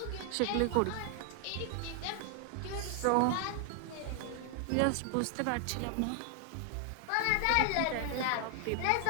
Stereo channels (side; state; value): both; different; correlation 0.00